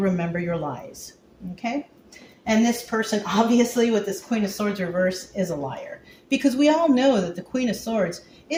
your lies. Okay? And this person, obviously, with this Queen of Swords reverse, is a liar. Because we all know that the Queen of Swords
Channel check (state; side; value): identical; both; correlation 1.00